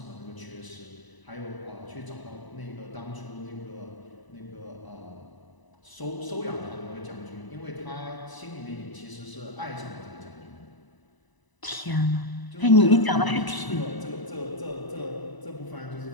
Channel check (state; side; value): late; right; 1.0 ms